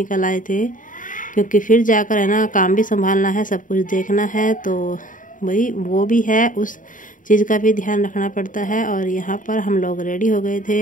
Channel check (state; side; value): late; right; 0.38 ms